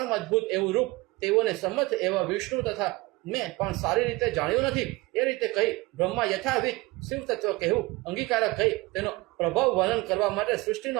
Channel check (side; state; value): left; quieter; 21.7 dB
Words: અદ્ભુત એવું રૂપ તેઓને સંમત એવા વિષ્ણુ તથા મેં પણ સારી રીતે જાણ્યું નથી. એ રીતે કહી બ્રહ્મા યથાવિધ શિવ તત્વ કહેવું અંગીકારક કહી તેનો પ્રભાવ વર્ણન કરવા માટે સૃષ્ટિનો